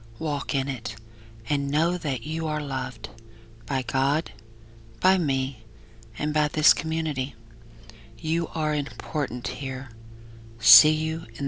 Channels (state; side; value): identical; both; correlation 1.00